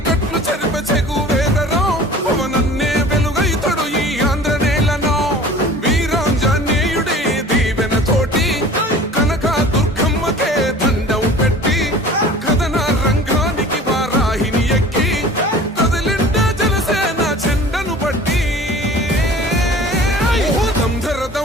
చెరిపే చెగు వేదరో పవనన్నే వెలుగైతడు ఈ ఆంధ్ర నేలను వీరాంజనేయుడి దీవెన తోటి కనక దుర్గమ్మకే దండం పెట్టి కథన రంగానికి వారాహిని ఎక్కి కదిలిండ జనసేన చెండను పట్టి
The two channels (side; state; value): both; normal; correlation 0.44